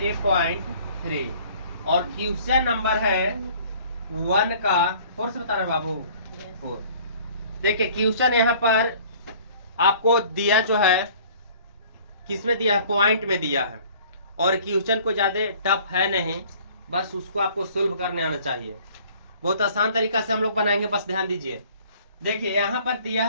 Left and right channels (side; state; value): both; inverted; correlation -0.53